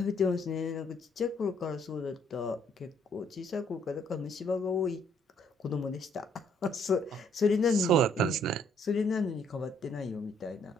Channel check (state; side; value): normal; both; correlation 0.66